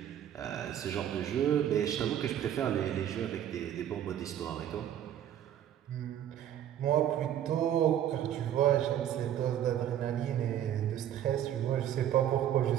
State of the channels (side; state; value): left; quieter; 10.7 dB